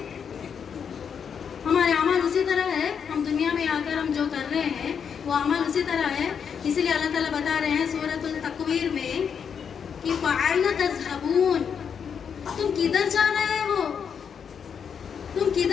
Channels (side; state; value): right; quieter; 7.1 dB